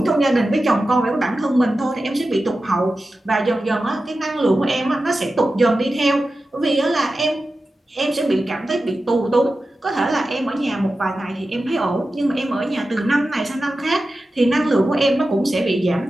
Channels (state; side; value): normal; both; correlation 0.93